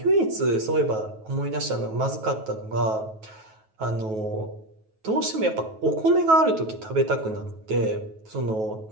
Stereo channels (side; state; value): left; late; 9.3 ms